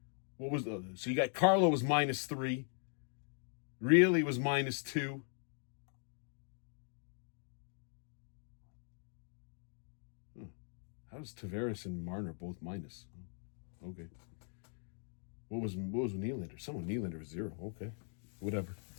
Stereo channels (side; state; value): right; silent; 51 dB below the other